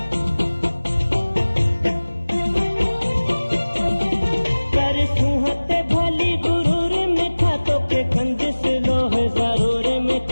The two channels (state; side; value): inverted; both; correlation -1.00